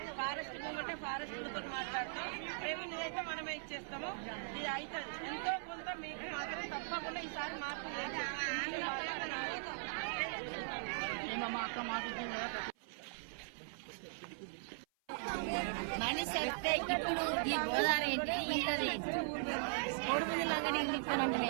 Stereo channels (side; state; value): left; silent; 51 dB below the other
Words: ఫారెస్ట్ మూమెంటే ఫారెస్ట్లతో మాట్లాడతాం. రెవెన్యూ అయితే మనమే ఇచ్చేస్తాము. ఇది అవుతుంది. ఎంతో కొంత మీకు మాత్రం తప్పకుండా ఈసారి మార్పు మనిషి వస్తే ఇప్పుడు ఈ గోదావరి ఏంటి, ఇళ్ళది ఏంటి, కోడిపుంజులాగా ఇల్లు ఇస్తానంటే